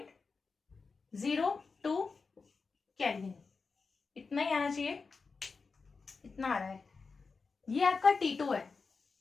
केल्विन, इतना ही आना चाहिए, इतना आ रहा है, ये आपका T2 है,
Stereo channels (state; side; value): quieter; right; 4.6 dB